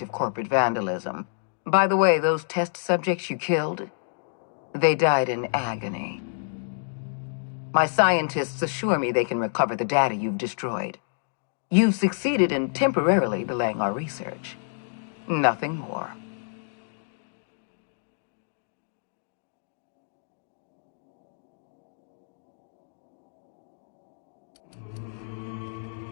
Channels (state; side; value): silent; right; digital silence